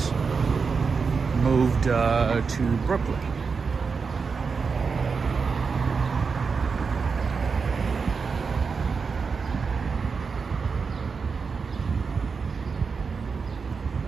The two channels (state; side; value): quieter; left; 5.2 dB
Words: moved to Brooklyn.